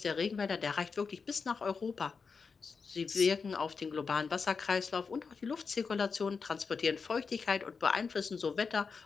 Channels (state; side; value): quieter; right; 5.2 dB